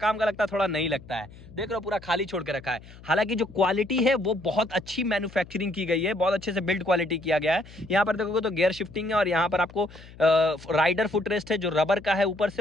का लगता है, थोड़ा नहीं लगता है। देख लो पूरा खाली छोड़ के रखा है। हालांकि जो क्वालिटी है वो बहुत अच्छी मैन्युफैक्चरिंग की गई है, बहुत अच्छे से बिल्ड क्वालिटी किया गया है। यहाँ पर देखोगे तो गियर शिफ्टिंग है, और यहाँ पर आपको राइडर फुटरेस्ट है जो रबर का है ऊपर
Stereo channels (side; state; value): left; noise; hum, 20 dB below the sound